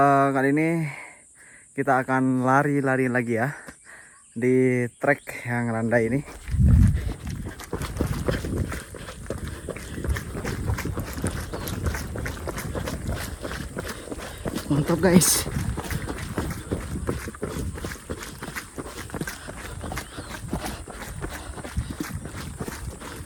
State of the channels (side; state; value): both; identical; correlation 1.00